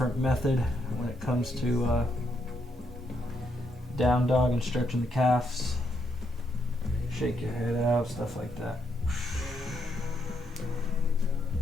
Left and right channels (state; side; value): normal; both; correlation 0.77